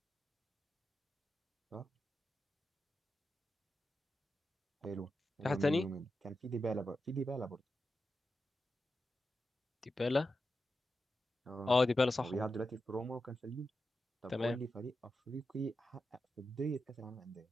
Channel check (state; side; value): normal; both; correlation 0.90